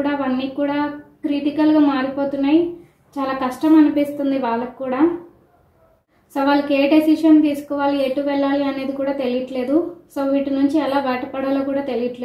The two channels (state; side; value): identical; both; correlation 1.00